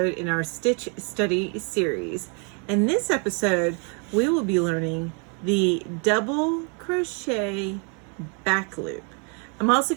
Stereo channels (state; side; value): quieter; left; 37.2 dB